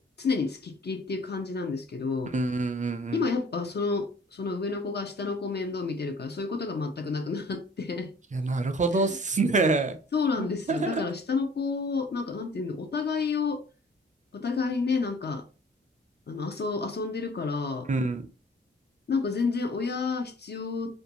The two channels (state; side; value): normal; both; correlation 0.52